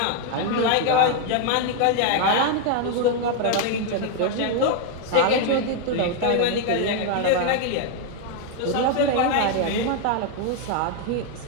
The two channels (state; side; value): different; both; correlation 0.00